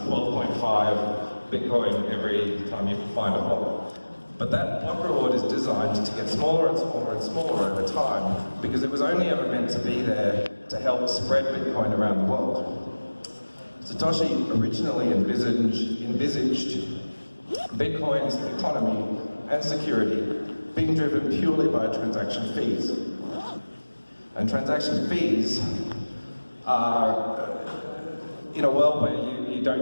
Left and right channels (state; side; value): inverted; both; correlation -1.00